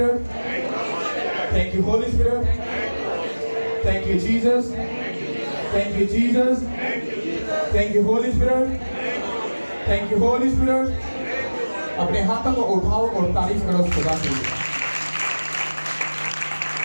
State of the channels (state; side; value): inverted; both; correlation -1.00